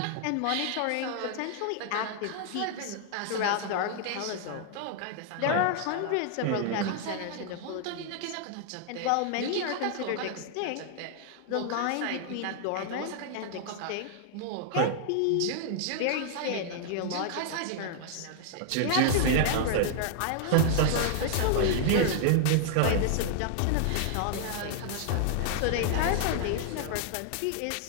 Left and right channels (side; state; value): both; different; correlation 0.00